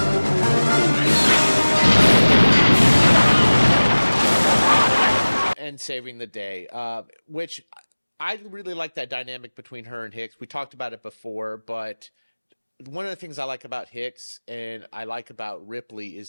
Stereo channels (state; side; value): inverted; both; correlation -1.00